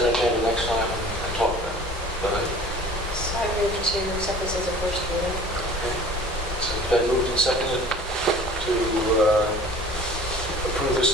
agenda next time and talk about it. But So I move to accept this as a first reading. okay. So it's been moved and seconded to approve this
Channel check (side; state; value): both; normal; correlation 0.46